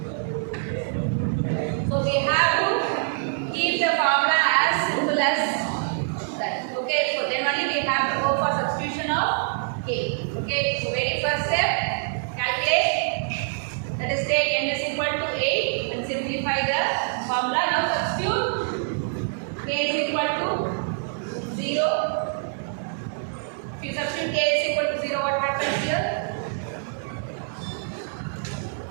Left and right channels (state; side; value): silent; left; 62 dB below the other